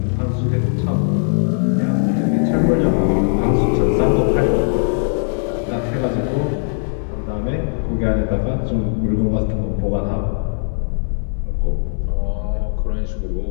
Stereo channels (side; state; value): right; silent; 61 dB below the other